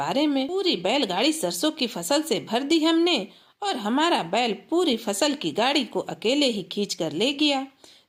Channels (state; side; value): identical; both; correlation 1.00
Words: में। पूरी बैलगाड़ी सरसों की फसल से भर दी हमने और हमारा बैल पूरी फसल की गाड़ी को अकेले ही खींच कर ले गया।